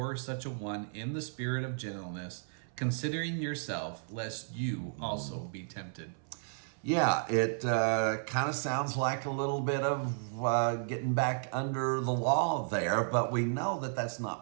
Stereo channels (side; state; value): left; silent; 55 dB below the other